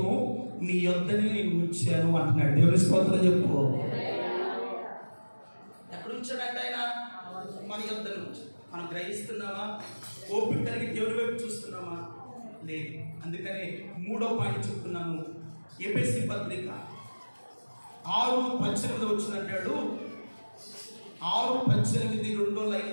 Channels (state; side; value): inverted; both; correlation -1.00